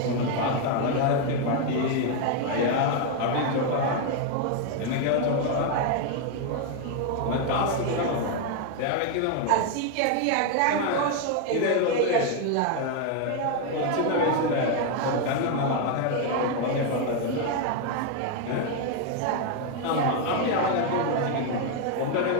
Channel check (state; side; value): different; both; correlation 0.01